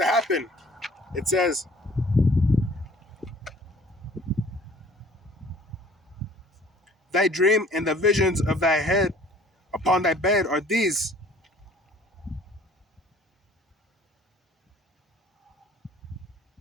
happen. It says, thy dream and the visions of thy head upon thy bed are these.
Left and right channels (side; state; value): both; normal; correlation 0.53